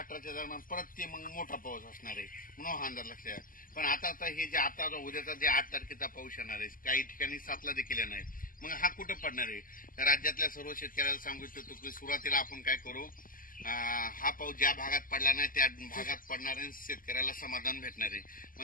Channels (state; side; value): late; right; 0.41 ms